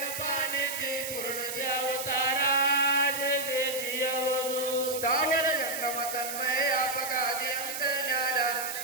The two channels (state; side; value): noise; right; hiss, 6 dB below the sound